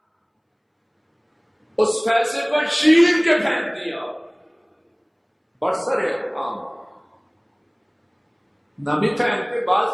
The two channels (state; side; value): identical; both; correlation 1.00